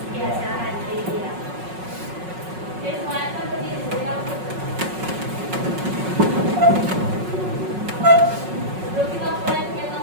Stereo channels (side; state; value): left; late; 5.4 ms